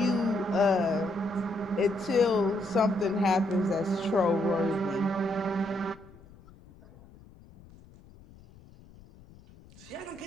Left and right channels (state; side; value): noise; left; rumble, 23 dB below the sound